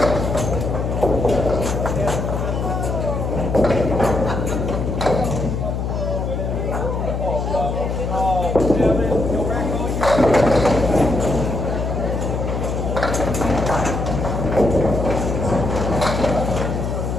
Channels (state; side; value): noise; left; hum, 2 dB below the sound